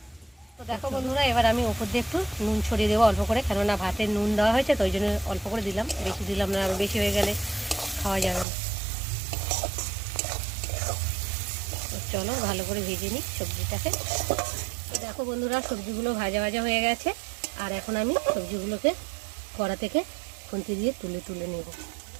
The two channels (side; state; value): left; drops out; at 8.5 s